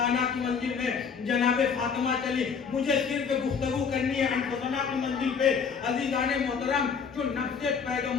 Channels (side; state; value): right; quieter; 6.1 dB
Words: کی منزل میں جناب فاطمہ چلی۔ مجھے صرف گفتگو کرنی ہے انفسنا کی منزل پہ۔ عزیزان محترم، جو نفس